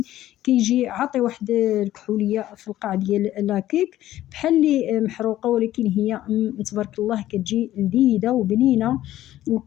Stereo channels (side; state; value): right; quieter; 13.8 dB